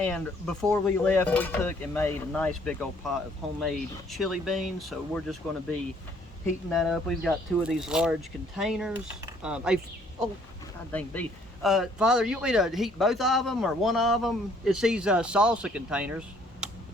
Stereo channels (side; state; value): both; normal; correlation 0.62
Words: before we left we took and made a nice big old pot of homemade chili beans, so we're just going to be heating that up. We've got 2 of these large containers. Oh, god dang beef. Father, you want me to heat both of them or one of them? It's these salsa containers.